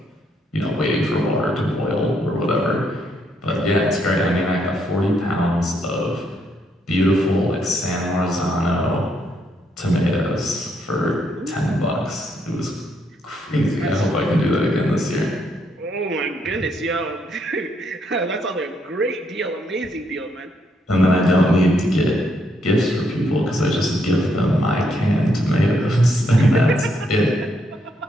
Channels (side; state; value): both; normal; correlation 0.75